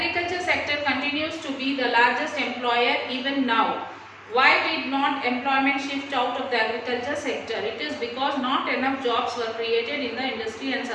sector continues to be the largest employer even now. Why did not employment shift out of the agriculture sector? It is because not enough jobs were created in the industry and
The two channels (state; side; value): identical; both; correlation 1.00